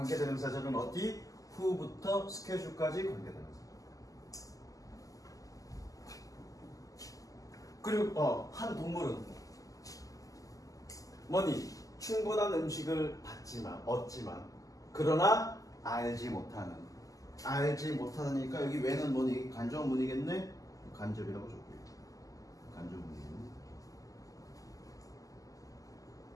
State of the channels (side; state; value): right; late; 0.17 ms